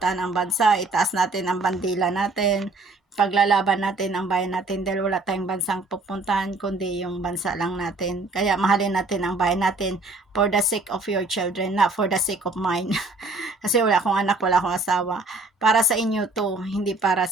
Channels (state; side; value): quieter; left; 3.3 dB